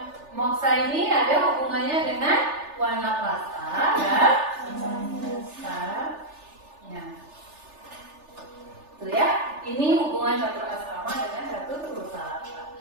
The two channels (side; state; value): left; late; 3.4 ms